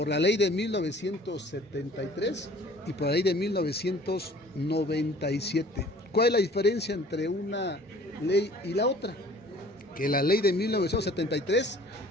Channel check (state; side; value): normal; both; correlation 0.50